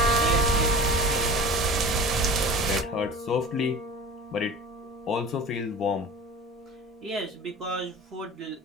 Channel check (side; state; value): both; normal; correlation 0.37